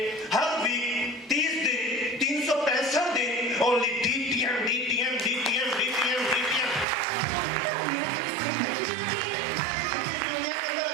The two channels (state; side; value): drops out; left; at 6.9 s